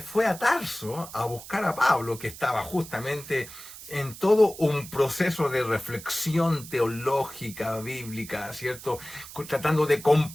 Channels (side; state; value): right; noise; hiss, 15 dB below the sound